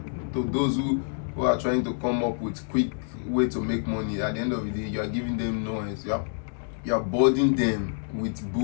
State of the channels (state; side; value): silent; right; digital silence